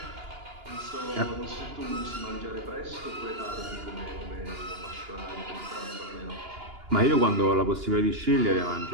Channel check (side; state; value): left; late; 2.9 ms